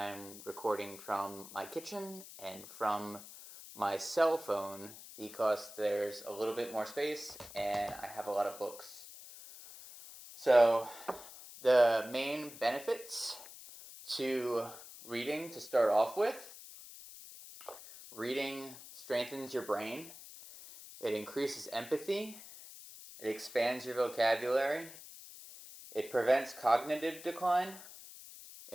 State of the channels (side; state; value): left; noise; hiss, 15 dB below the sound